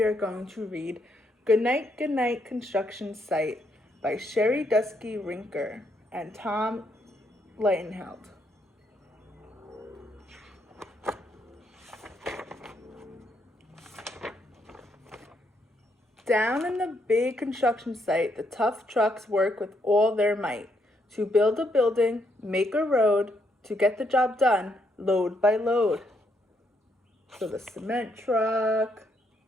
are going to read Goodnight, Goodnight Construction Site by Sherry Dusky Rinker and Tom Lightenheld. Down in the big construction site, the tough trucks work with all their might to build a building, make a road, to get the job done, load by load. So the cement truck,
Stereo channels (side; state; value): both; normal; correlation 0.75